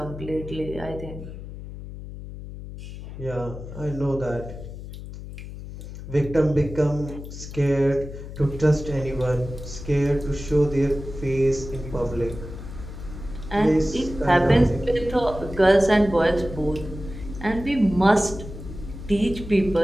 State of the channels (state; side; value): noise; left; hum, 11 dB below the sound